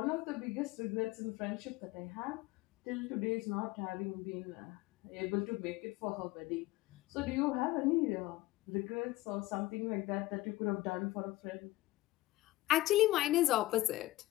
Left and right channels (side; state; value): right; quieter; 17.8 dB